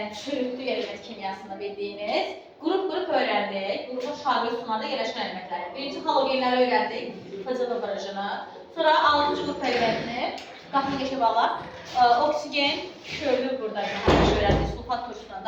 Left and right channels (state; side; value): identical; both; correlation 1.00